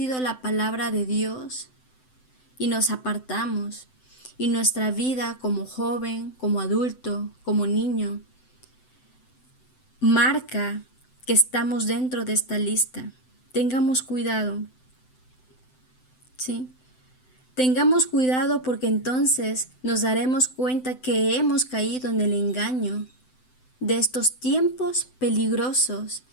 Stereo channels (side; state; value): right; late; 7.9 ms